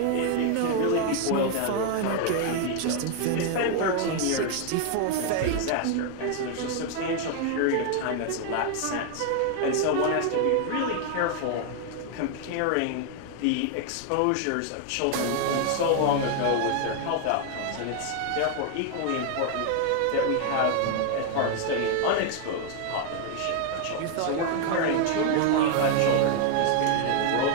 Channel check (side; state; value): both; different; correlation 0.00